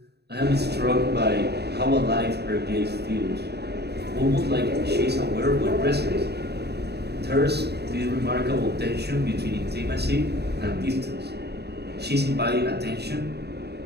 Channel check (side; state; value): left; late; 0.48 ms